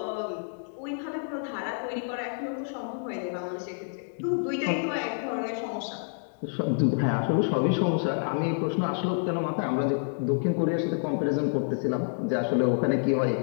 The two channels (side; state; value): right; silent; digital silence